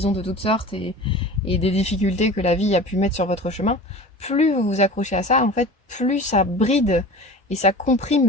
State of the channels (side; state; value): both; normal; correlation 0.37